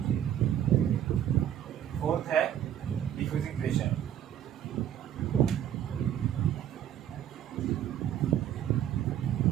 फोर्थ है diffusing pressure,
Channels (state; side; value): quieter; left; 10.6 dB